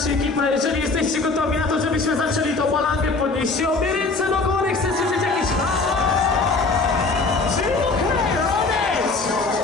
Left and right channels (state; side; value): quieter; right; 3.8 dB